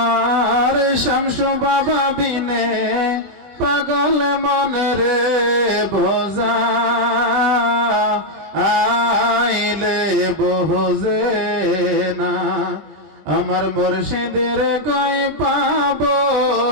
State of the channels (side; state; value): left; late; 20 ms